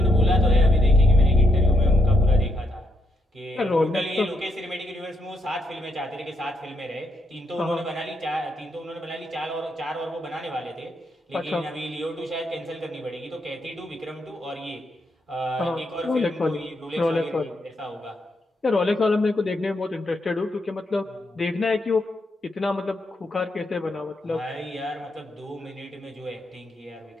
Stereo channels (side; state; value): both; normal; correlation 0.78